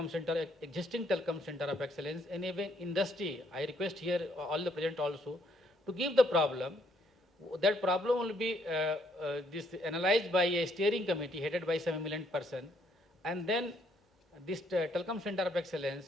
center, existing telecom center of excellence, and even industry. I request here all the present also to give the problem. That problem will be analyzed by a steering committee headed by some eminent person, and then this telecom center of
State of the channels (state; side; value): normal; both; correlation 0.69